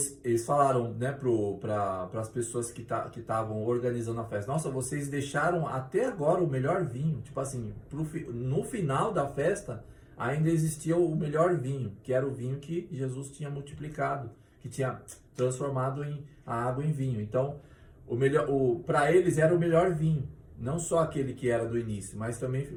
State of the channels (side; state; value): both; identical; correlation 1.00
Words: eles falaram, né, para as pessoas que estavam organizando a festa, nossa, vocês deixaram até agora o melhor vinho. Tipo assim, no final da festa, ainda existia o melhor vinho, que era o vinho que Jesus tinha multiplicado, que tinha transformado a água em vinho. Então, para eles era o melhor vinho, não só aquele que era do início, mas também,